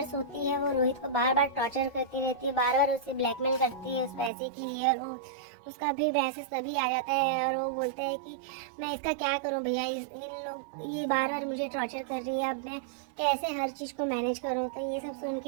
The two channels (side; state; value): left; drops out; at 4.3 s